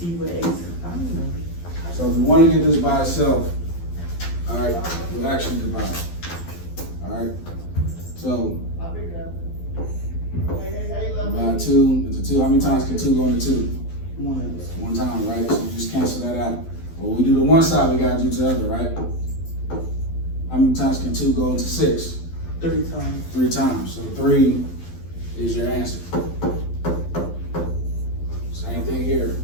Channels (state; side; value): late; right; 12 ms